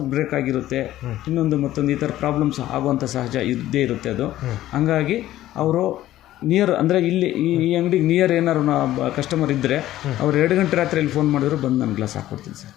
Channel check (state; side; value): quieter; right; 14.2 dB